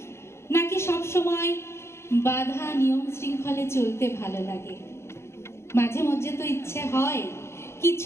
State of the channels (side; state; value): right; late; 0.13 ms